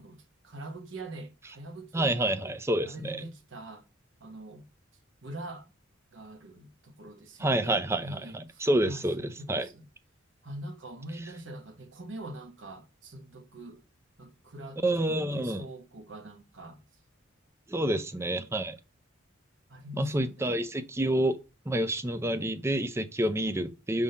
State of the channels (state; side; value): normal; both; correlation 0.62